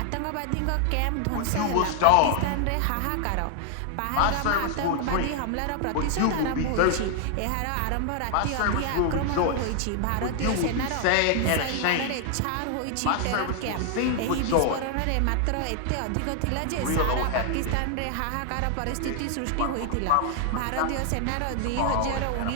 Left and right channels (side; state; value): both; different; correlation 0.00